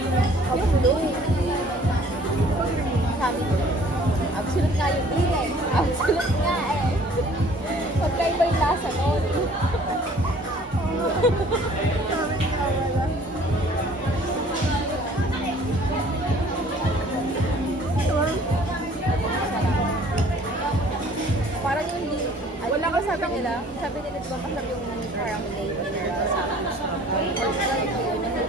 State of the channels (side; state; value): both; normal; correlation 0.53